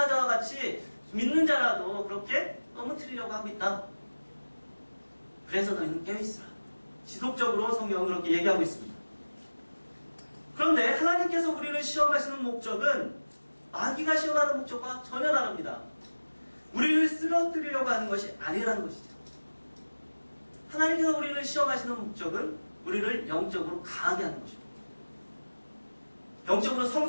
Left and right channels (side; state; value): both; inverted; correlation -1.00